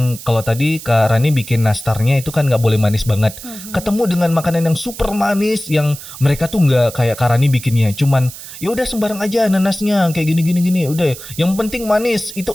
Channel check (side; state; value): right; noise; hiss, 14 dB below the sound